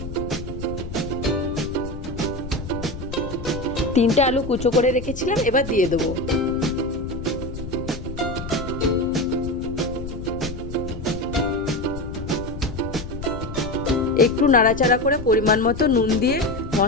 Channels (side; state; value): left; noise; rumble, 9 dB below the sound